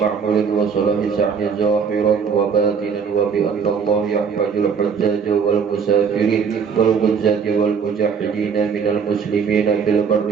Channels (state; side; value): quieter; left; 6.3 dB